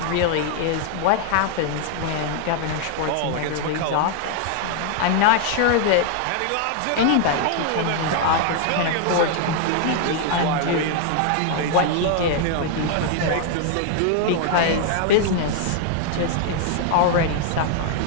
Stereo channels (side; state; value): both; different; correlation 0.00